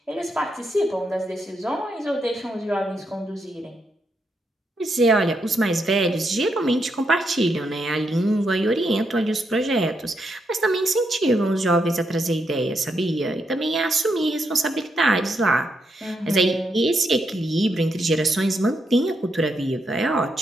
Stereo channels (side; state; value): both; normal; correlation 0.80